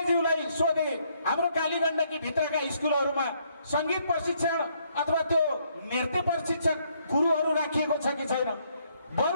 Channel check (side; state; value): both; inverted; correlation -0.70